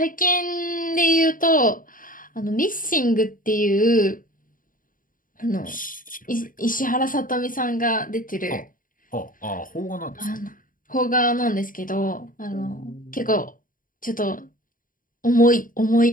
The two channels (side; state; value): right; late; 0.40 ms